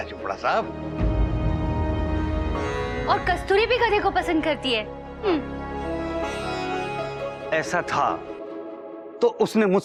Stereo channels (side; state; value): both; identical; correlation 1.00